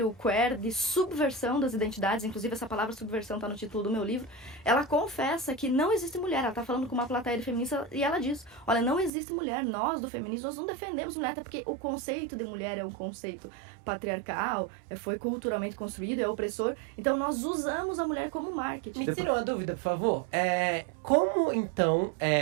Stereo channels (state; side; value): drops out; left; at 9.1 s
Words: queer de subversão das identidades, inclusive essa palavra subversão está no título do meu livro, ela confessa que não existe mulher. Ela está falando com uma plateia de feminista e ela diz, olha, não existe mulher, nós do feminismo, nós não defendemos mulher, até porque o conceito de mulher é um conceito patriarcal, foi culturalmente construído, é opressor, então nós usamos a mulher como marketing. Me tira uma dúvida, por favor. Como, então,